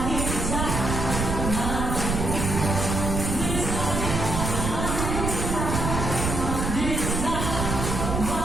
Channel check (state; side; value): noise; right; rumble, 2 dB below the sound